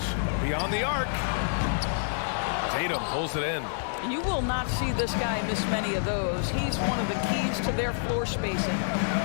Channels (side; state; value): right; silent; digital silence